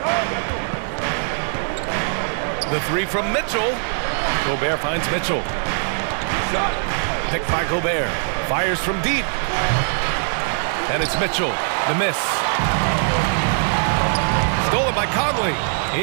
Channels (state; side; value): silent; left; 65 dB below the other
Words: The three from Mitchell. Gobert finds Mitchell. Picked by Gobert. Fires from deep. And it's Mitchell. The miss. Stolen by Conley.